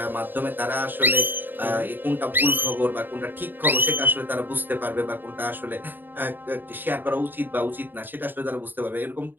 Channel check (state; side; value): late; left; 0.092 ms